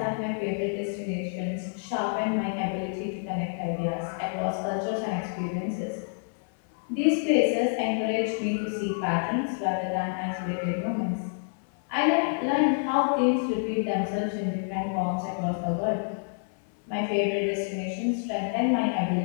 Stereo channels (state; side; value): silent; right; 59 dB below the other